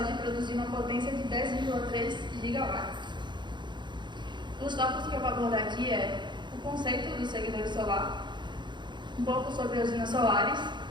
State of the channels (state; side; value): late; left; 0.22 ms